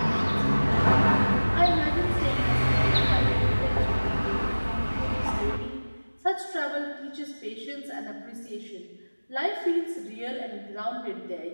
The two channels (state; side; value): inverted; both; correlation -1.00